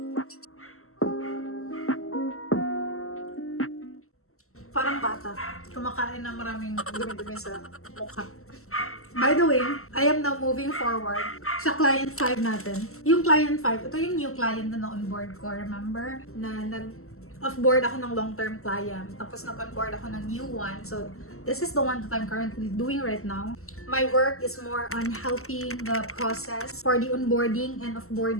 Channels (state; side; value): late; right; 0.63 ms